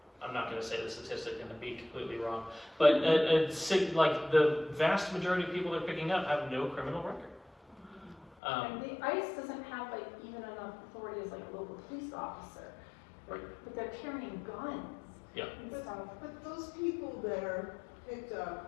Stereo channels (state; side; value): drops out; right; at 8.3 s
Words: I'm not going to say the statistic and be completely wrong, but like the vast majority of people they're picking up have no criminal record. And the ICE doesn't have like even enough authority as like a local police officer, Right. but they're carrying guns. Yeah. And stuff. But those people that are picked